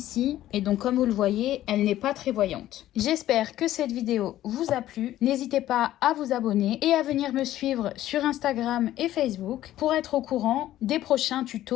Et donc comme vous le voyez, elle n'est pas très voyante. J'espère que cette vidéo vous a plu. N'hésitez pas à vous abonner et à venir me suivre sur Instagram et Facebook pour être au courant des prochains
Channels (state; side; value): quieter; right; 13.6 dB